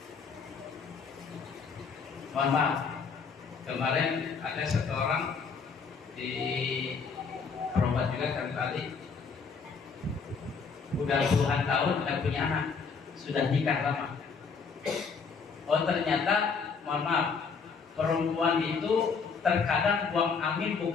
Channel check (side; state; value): right; quieter; 5.4 dB